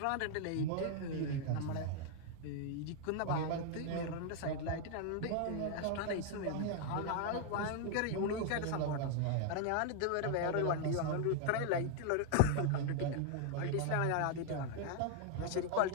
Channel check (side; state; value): both; different; correlation 0.00